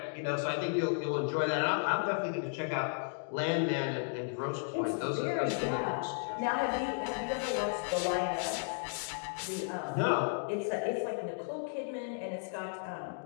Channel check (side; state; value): right; silent; digital silence